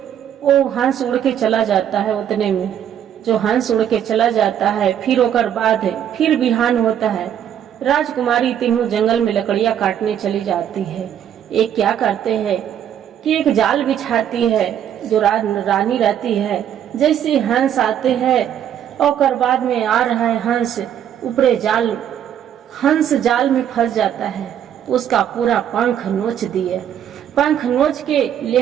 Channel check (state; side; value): quieter; left; 9.8 dB